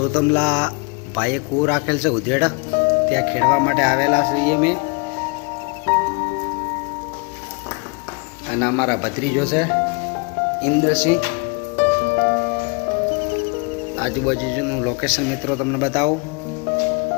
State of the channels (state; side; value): quieter; right; 33.1 dB